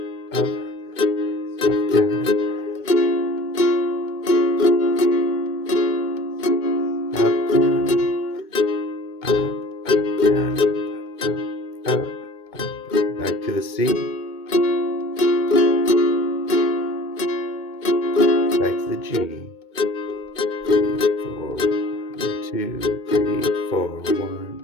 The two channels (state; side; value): late; right; 2.2 ms